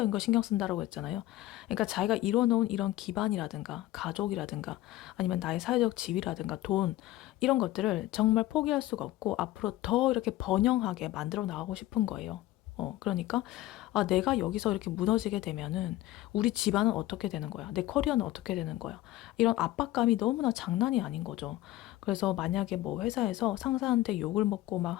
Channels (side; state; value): right; quieter; 15.8 dB